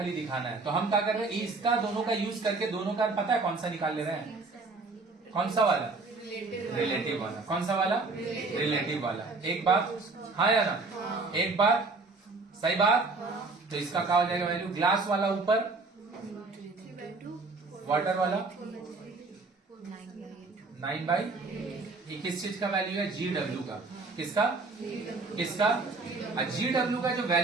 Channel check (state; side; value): quieter; left; 3.8 dB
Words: दिखाना है, तो हम क्या कर रहे हैं, इसका दोनों का यूज करके दोनों का पता है कौन सा निकाल ले रहे हैं? कौन सा वाला? रिलेटिव वाला। कौन सा वाला? रिलेटिव वाला। एक बात हाँ या ना? एक बात सही बात। तो इसका क्या हो जाएगा वैल्यू? ग्लास वाला ऊपर, वाटर वाला 9/, ये किस चीज का वैल्यू है? GW का। किसका? GW का जो